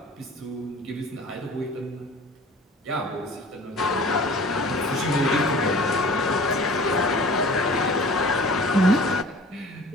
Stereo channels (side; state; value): both; normal; correlation 0.45